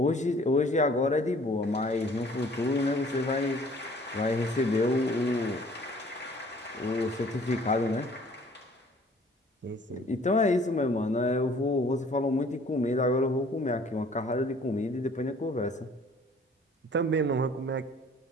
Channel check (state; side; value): normal; both; correlation 0.54